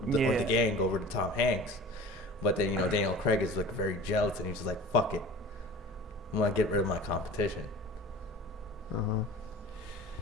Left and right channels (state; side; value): normal; both; correlation 0.40